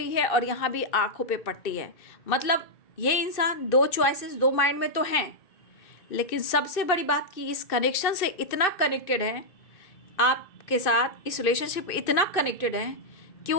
है और यहाँ भी आंखों पे पट्टी है, मतलब ये इंसान 2 चॉइसेस, 2 माइंड में तो हैं, लेकिन सबसे बड़ी बात कि इस कनेक्शन से इतना कनेक्टेड है आपके साथ, इस रिलेशनशिप इतना कनेक्टेड है कि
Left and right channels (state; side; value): late; right; 2.6 ms